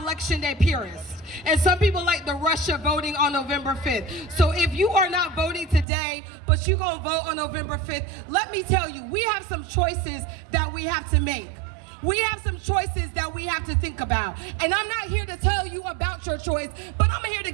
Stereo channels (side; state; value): left; drops out; at 5.9 s